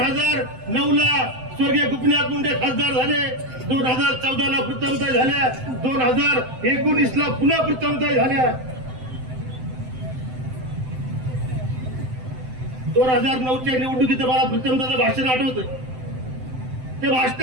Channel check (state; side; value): late; left; 7.8 ms